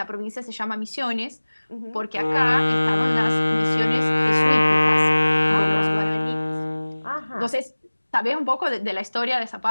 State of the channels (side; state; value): both; inverted; correlation -1.00